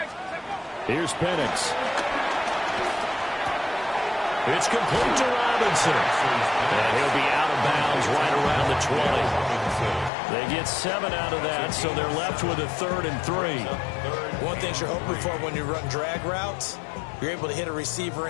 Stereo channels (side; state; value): right; drops out; at 10.1 s